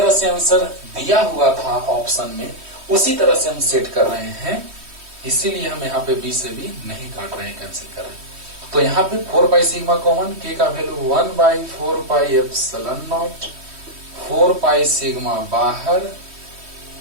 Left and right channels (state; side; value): late; left; 3.1 ms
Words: से आंसर दिया हुआ था ऑप्शन में उसी तरह से हम सेट कर रहे हैं, इसीलिए हम यहाँ पे बी से भी नहीं काट रहे हैं, कैंसिल कर रहे हैं। तो यहाँ पे 4 पाई सिग्मा कॉमन, के का value 1 by 4 pi epsilon naught, 4 pi sigma बाहर।